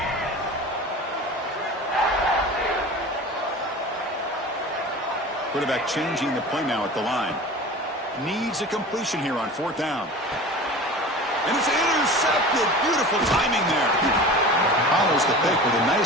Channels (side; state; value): both; normal; correlation 0.36